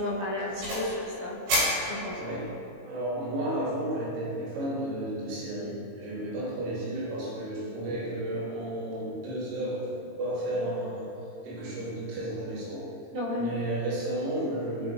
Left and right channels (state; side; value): late; left; 22 ms